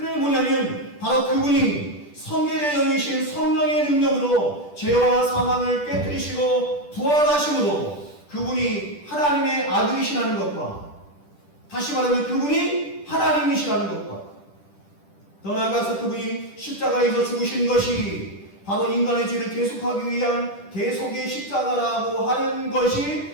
뭐냐면 바로 그분이 성결의 영이신 성령의 능력으로 죄와 사망을 깨뜨리시고 부활하심으로 그분이 하나님의 아들이시라는 것과, 다시 말하면 그분이 하나님이시라는 것과, 더 나아가서 그분이 십자가에서 죽으신 것이 바로 인간의 죄를 대속하기 위한 대속의 십자가라고 하는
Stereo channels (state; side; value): late; right; 10 ms